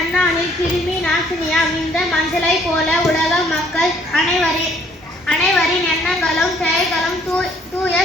கிருமி நாசினியாம் இந்த மஞ்சளை போல உலக மக்கள் அனைவரின் எண்ணங்களும் செயல்களும் தூய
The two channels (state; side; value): normal; both; correlation 0.63